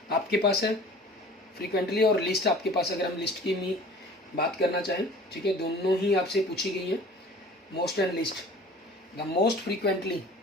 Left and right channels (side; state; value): both; normal; correlation 0.45